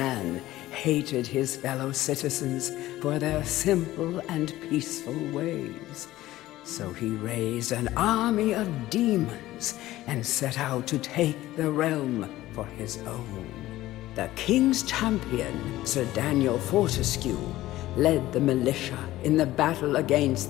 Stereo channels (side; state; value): right; quieter; 16.0 dB